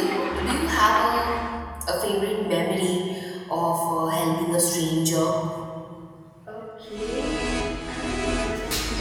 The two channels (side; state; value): both; identical; correlation 1.00